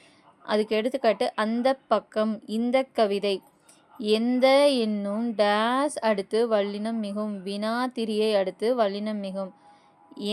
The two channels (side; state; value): both; identical; correlation 1.00